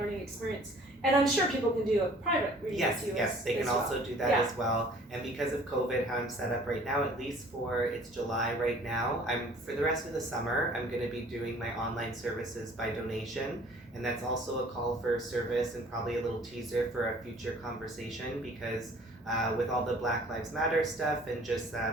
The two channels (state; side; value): normal; both; correlation 0.52